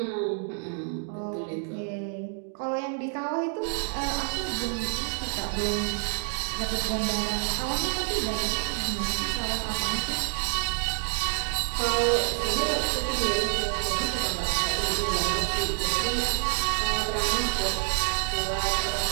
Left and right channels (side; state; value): left; silent; 56 dB below the other